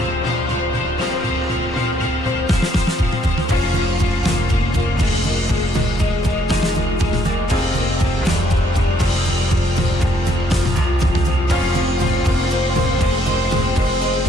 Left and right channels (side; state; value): both; normal; correlation 0.68